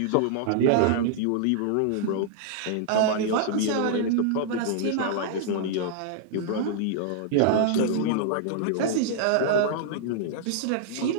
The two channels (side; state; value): both; different; correlation -0.01